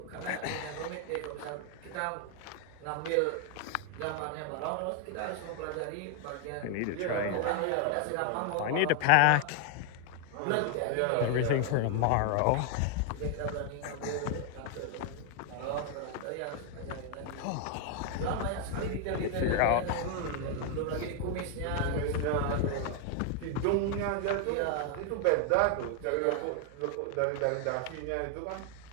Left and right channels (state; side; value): different; both; correlation 0.00